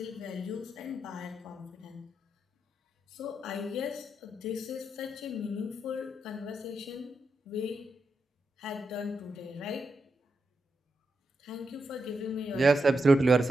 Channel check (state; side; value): normal; both; correlation 0.85